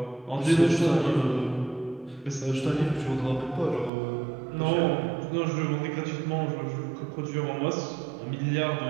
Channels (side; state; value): left; drops out; at 3.9 s